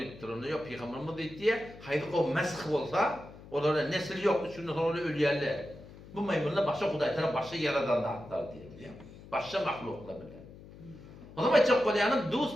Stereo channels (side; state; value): left; noise; hum, 18 dB below the sound